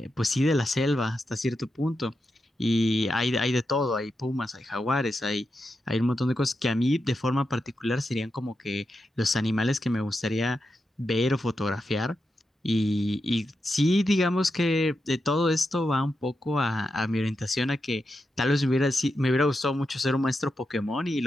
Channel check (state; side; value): normal; both; correlation 0.87